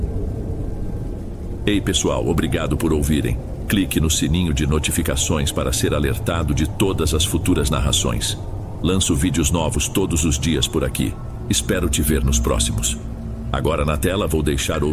Ei pessoal, obrigado por ouvirem. Clique no sininho de notificações para ser alertado de todas as futuras narrações. Lanço vídeos novos todos os dias por aqui. Espero te ver nos próximos. Agora na tela vou deixar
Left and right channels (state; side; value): identical; both; correlation 1.00